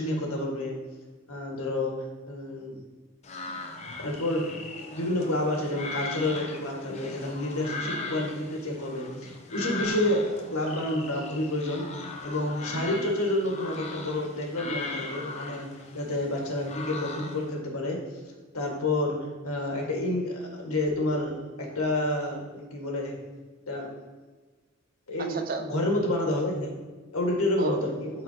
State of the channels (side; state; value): both; normal; correlation 0.23